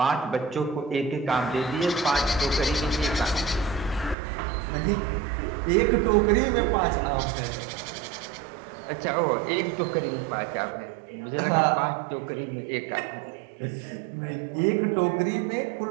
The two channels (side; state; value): left; drops out; at 4.2 s